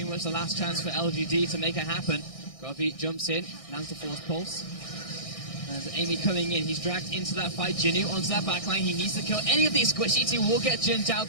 much the last chance for LGD to make it happen. Godby jumps in, lands the Force Pulse. As Amy coming in, he's dragged into that fight. Jinu onto that backline. He needs to kill any of these squishy. He will get Jin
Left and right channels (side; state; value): right; late; 1.6 ms